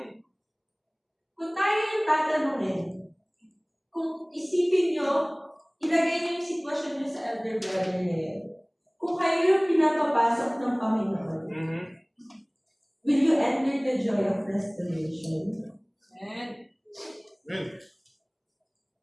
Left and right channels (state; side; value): identical; both; correlation 1.00